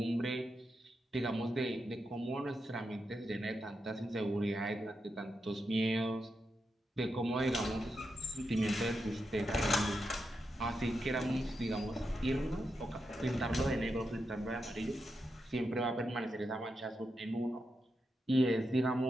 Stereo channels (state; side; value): normal; both; correlation 0.86